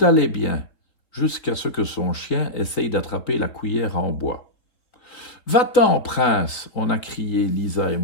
allait bien, jusqu'à ce que son chien essaye d'attraper la cuillère en bois. « Va-t'en, prince !» on a crié, Lisa et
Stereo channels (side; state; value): right; late; 3.7 ms